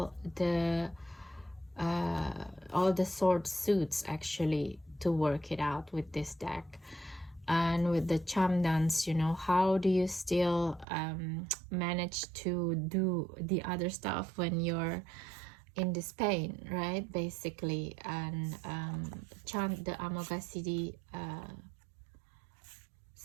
the sword suits actually to work it out with this deck. And with the charm dance, you know, how do you still manage to do the other stuff when you're in this pain, right? Basically, and chant the Amoghasiddhi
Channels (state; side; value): drops out; left; at 10.9 s